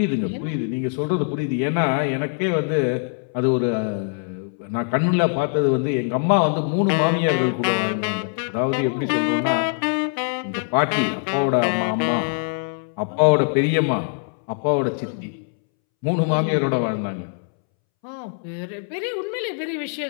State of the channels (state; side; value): silent; right; 64 dB below the other